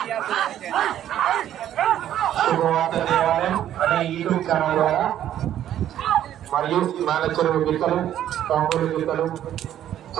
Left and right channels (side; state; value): left; quieter; 11.4 dB